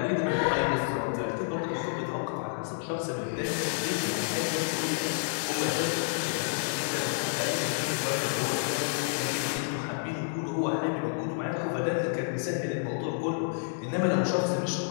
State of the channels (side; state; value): right; silent; digital silence